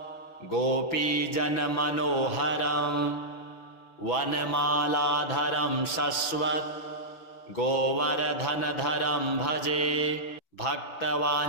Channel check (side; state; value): right; late; 6.0 ms